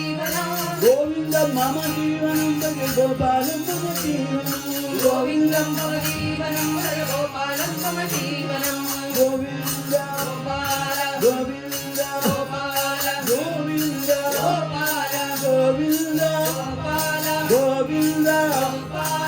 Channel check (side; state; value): both; identical; correlation 1.00